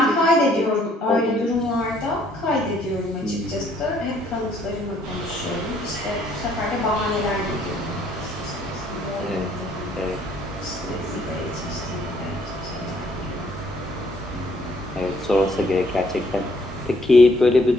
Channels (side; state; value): both; normal; correlation 0.65